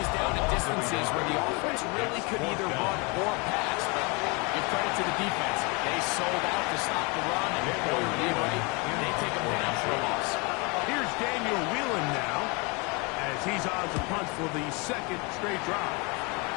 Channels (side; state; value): right; quieter; 29.7 dB